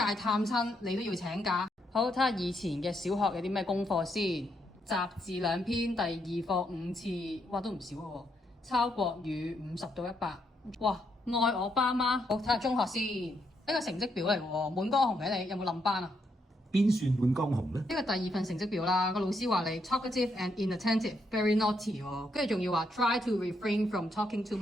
探親你都要請假。好，睇下以前嘅小學有啲咩功課先。雜字2篇，第2課5次，哇都唔少喎。抄國語50到100。哇！愛我爸媽。好，睇下中學先。呢個成績表嚟喎，滿江紅嘅你有冇冧班啊？邊算滿江紅呢？呢個第2份成績表啦，個老師話你 talkative and inattentive，very naughty 喎，跟住仲要話 try to refrain from talking too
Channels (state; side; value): normal; both; correlation 0.77